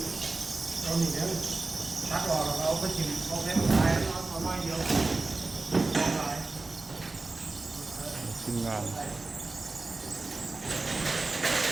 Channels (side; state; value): left; quieter; 3.4 dB